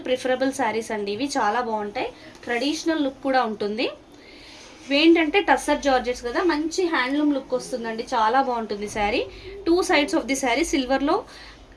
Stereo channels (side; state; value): both; identical; correlation 1.00